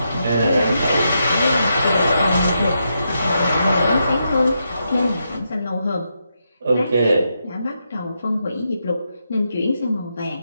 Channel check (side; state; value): both; inverted; correlation -0.83